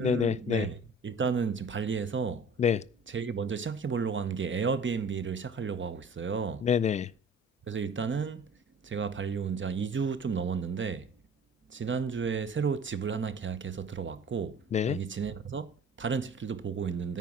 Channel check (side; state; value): both; normal; correlation 0.45